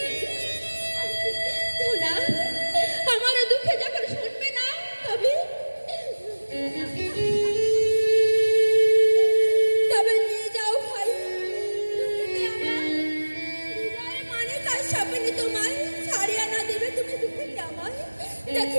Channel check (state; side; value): inverted; both; correlation -1.00